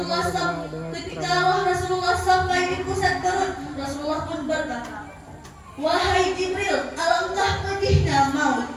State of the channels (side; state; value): both; identical; correlation 1.00